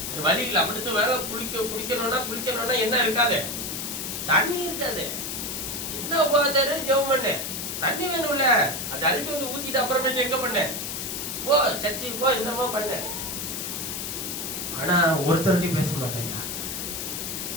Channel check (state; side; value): noise; left; hiss, 4 dB below the sound